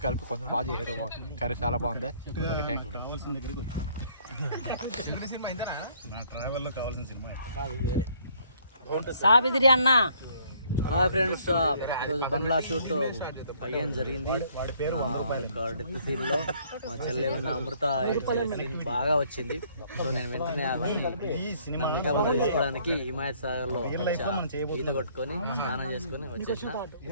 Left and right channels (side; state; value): both; inverted; correlation -0.62